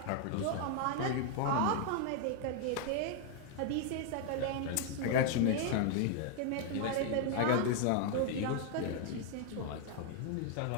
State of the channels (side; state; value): both; different; correlation 0.00